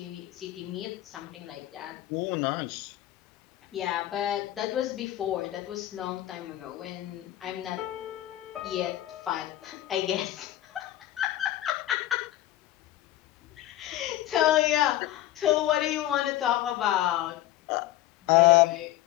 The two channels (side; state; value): right; quieter; 14.6 dB